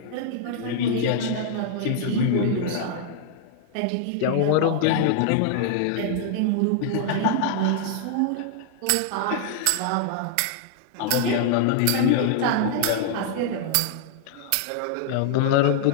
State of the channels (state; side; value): different; both; correlation -0.01